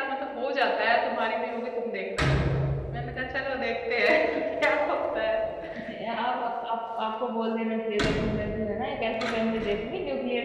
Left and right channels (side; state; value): both; identical; correlation 1.00